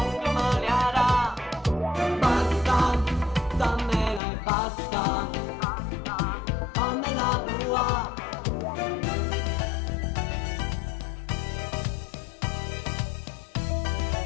malearà. Basta, dammela e basta, fammela tua.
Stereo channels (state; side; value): drops out; right; at 4.2 s